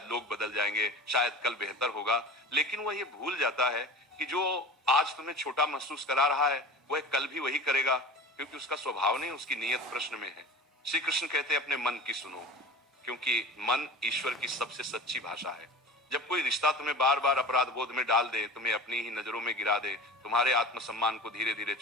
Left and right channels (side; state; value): both; normal; correlation 0.35